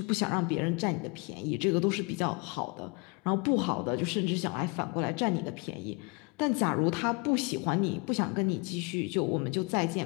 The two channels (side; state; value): right; quieter; 29.8 dB